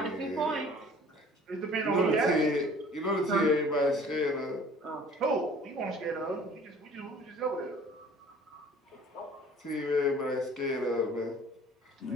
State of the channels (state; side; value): normal; both; correlation 0.50